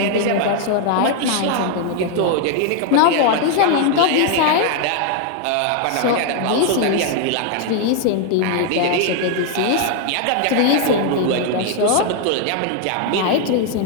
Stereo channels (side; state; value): both; different; correlation 0.00